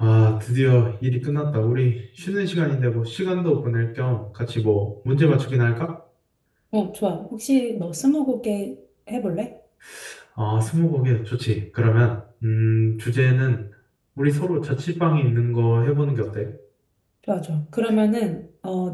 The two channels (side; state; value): both; identical; correlation 1.00